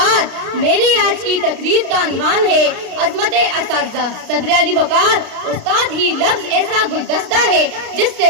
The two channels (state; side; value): late; left; 33 ms